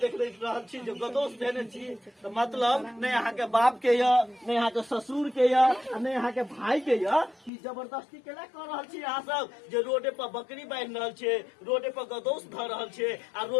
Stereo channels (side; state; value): right; drops out; at 7.5 s